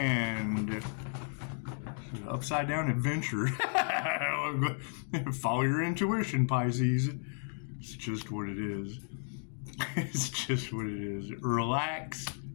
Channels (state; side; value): silent; right; 55 dB below the other